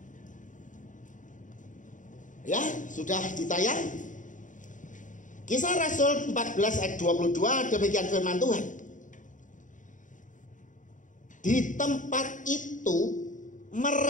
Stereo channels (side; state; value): right; late; 0.37 ms